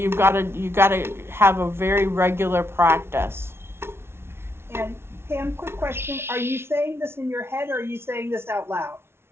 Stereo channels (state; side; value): late; left; 0.12 ms